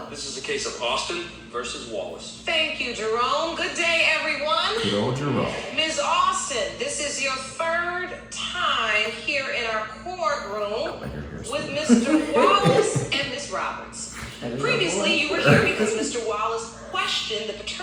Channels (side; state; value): both; identical; correlation 1.00